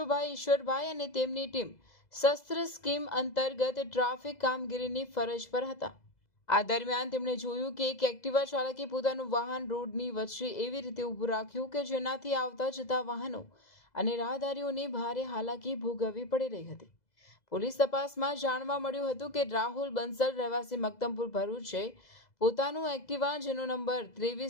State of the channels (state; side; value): late; right; 2.0 ms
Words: ઈશ્વરભાઈ અને તેમની ટીમ શસ્ત્ર સ્કીમ અંતર્ગત ટ્રાફિક કામગીરીની ફરજ પર હતા. આ દરમિયાન તેમણે જોયું કે એક એક્ટિવા ચાલકે પોતાનું વાહન રોડની વચ્ચે એવી રીતે ઊભું રાખ્યું કે જેનાથી આવતા જતા વાહનો અને રાહદારીઓને ભારે હાલાકી ભોગવવી પડી રહી હતી. પોલીસ તપાસમાં જાણવા મળ્યું હતું કે રાહુલ બંસલ રહેવાસી મક્તમપુર ભરૂચે પોતાનું એક્ટિવા જેનો નંબર